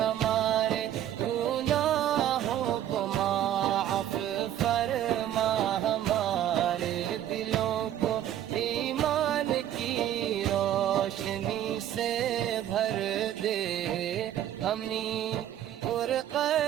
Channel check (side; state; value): left; quieter; 11.4 dB